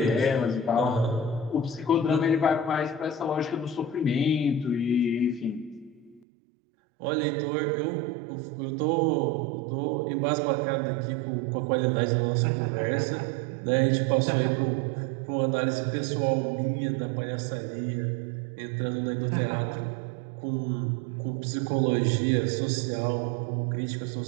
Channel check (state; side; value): drops out; left; at 6.2 s